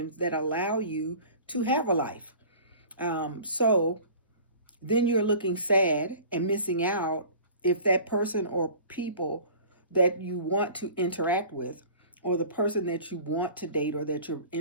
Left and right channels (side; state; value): both; inverted; correlation -0.43